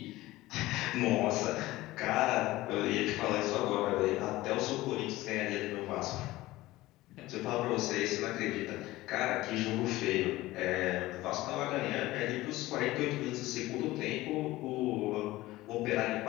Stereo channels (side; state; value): right; quieter; 17.9 dB